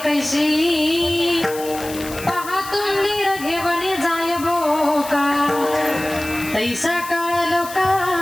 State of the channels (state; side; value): noise; left; hiss, 13 dB below the sound